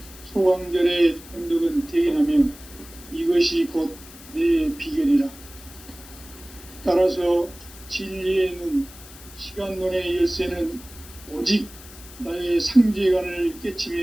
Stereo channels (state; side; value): noise; left; hiss, 19 dB below the sound